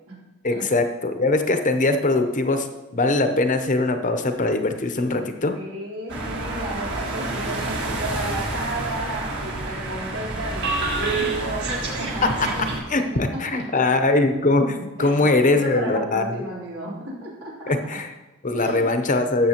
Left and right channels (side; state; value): both; normal; correlation 0.27